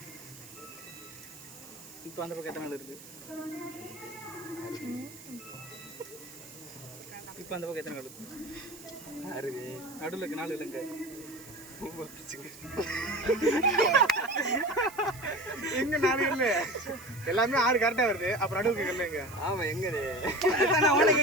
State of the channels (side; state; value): right; noise; hiss, 18 dB below the sound